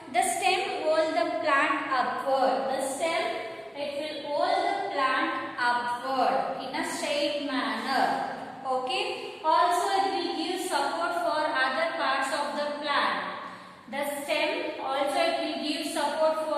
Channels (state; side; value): identical; both; correlation 1.00